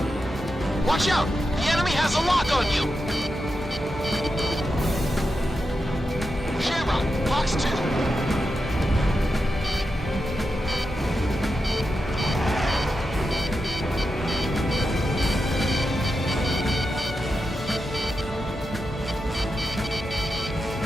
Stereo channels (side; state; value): both; normal; correlation 0.88